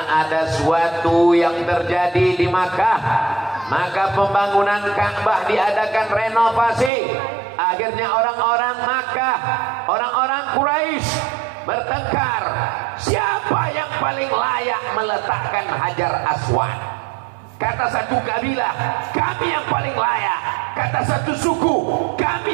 ada suatu yang terjadi di Makkah, maka pembangunan Ka'bah diadakan renovasi. Akhirnya orang-orang Makkah, orang-orang Quraisy bertengkar, siapa yang paling layak meletakkan Hajar Aswad. Kata satu kabilah, kami yang paling layak. Kata satu suku,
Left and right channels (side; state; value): left; drops out; at 6.9 s